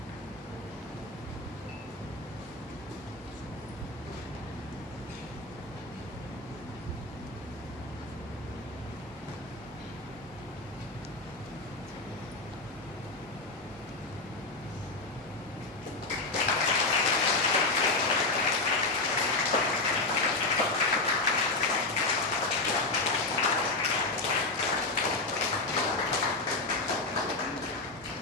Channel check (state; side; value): quieter; right; 3.2 dB